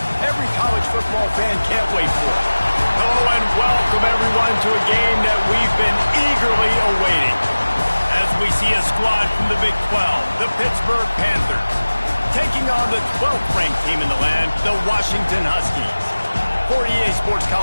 every college football fan can't wait for. Hello and welcome everyone to a game that we've been eagerly awaiting. As we see a squad from the Big 12, the Pittsburgh Panthers, taking on the 12th ranked team in the land, the Washington Huskies. For EA Sports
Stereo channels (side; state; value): both; inverted; correlation -1.00